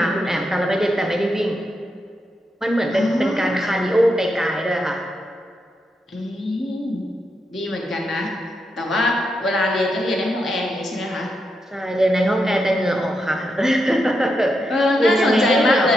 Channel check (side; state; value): both; normal; correlation 0.84